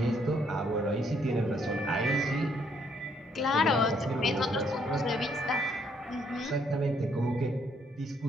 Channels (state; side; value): normal; both; correlation 0.69